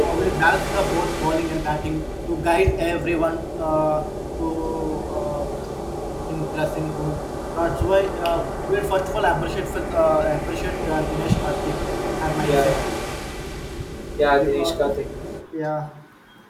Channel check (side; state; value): both; identical; correlation 1.00